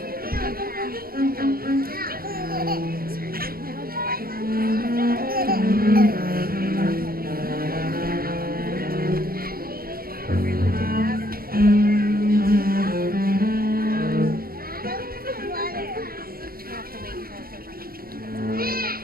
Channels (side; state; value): left; late; 0.43 ms